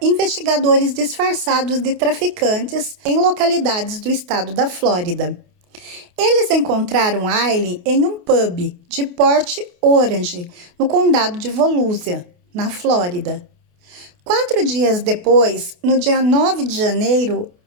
investigadores disfarçados de traficantes em localidades do estado da Flórida. Eles encontraram Aileen em um pub de Port Orange, no condado de Volusia, na Flórida. 4 dias depois, no dia 9 de janeiro,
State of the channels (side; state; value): left; late; 28 ms